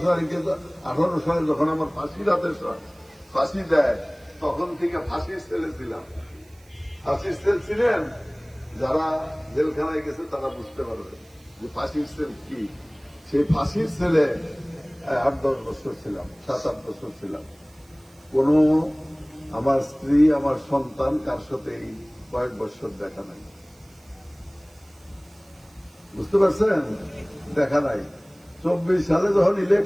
সালে যখন আমার ফাঁসি দেয়, তখন থেকে ফাঁসির সেলে ছিলাম। ফাঁসির সেল ছিলেন যারা জেলখানায় গেছে তারা বুঝতে পারবে যে ফাঁসির সেল কি। সেই ফাঁসির সেলে 8-10 বছর ছিলাম, 7-8 বছর ছিলাম। কোন আমার স্ত্রী আমার সন্তান কার সাথে এই কয়েক বছর দেখা নাই, বুঝতে পারছেন, দেখা নাই। 24 সালে যখন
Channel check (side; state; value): right; noise; hiss, 29 dB below the sound